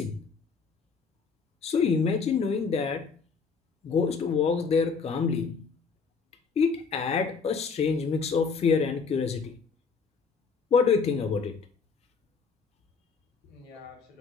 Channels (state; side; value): quieter; right; 5.3 dB